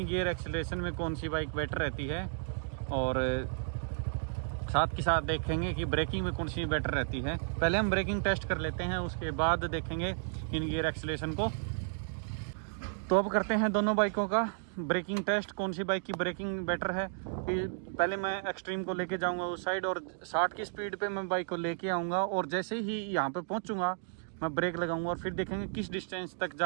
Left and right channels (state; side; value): silent; left; digital silence